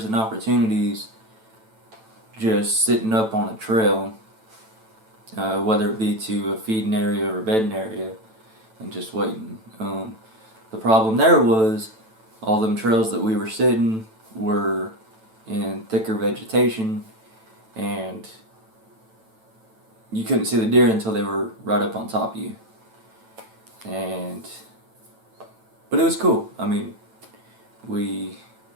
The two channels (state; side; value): late; left; 9.1 ms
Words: and opportunities just sitting up on a trail, whether it be to a feeding area or a bedding area, and just waiting. The problem there was all them trails that we were sitting were in thicker vegetation, and you couldn't see the deer until they were right up on top of you. But it was cool. I mean, we